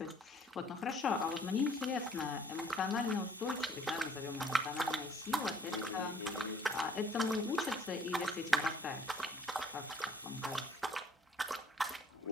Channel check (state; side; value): normal; both; correlation 0.58